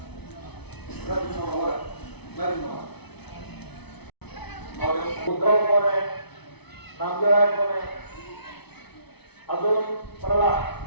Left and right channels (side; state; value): right; late; 0.99 ms